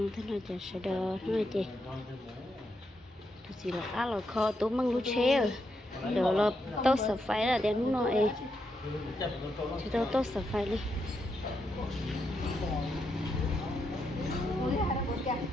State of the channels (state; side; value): normal; both; correlation 0.82